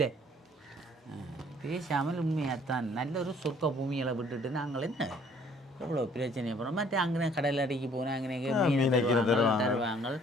பேசாமல் உண்மையாகத்தான் நல்ல ஒரு சொர்க்க பூமிகளை விட்டுட்டு நாங்கள் என்ன எவ்வளோ பிரச்சனை போகிறோம். மற்ற அங்கே கடல் அடிக்கு போனால் அங்கே தருவாங்க.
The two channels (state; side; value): normal; both; correlation 0.59